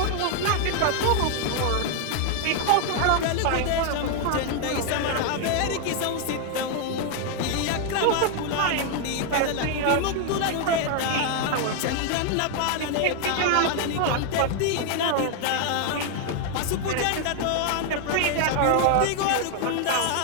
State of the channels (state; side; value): different; both; correlation 0.00